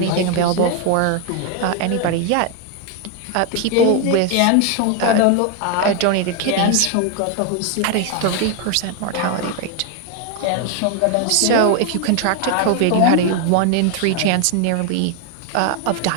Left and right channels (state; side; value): different; both; correlation 0.01